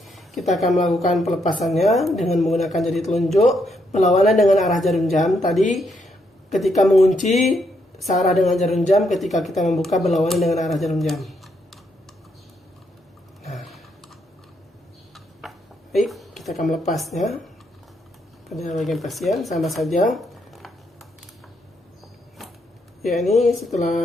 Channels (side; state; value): both; normal; correlation 0.76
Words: Kita akan melakukan pelepasannya dengan menggunakan jari telunjuk berlawanan dengan arah jarum jam. Tadi ketika mengunci searah dengan jarum jam, ketika kita membuka berlawanan dengan arah jarum jam. Nah, baik, kita akan melepasnya pada bagian pasien sama saja. Ya, ini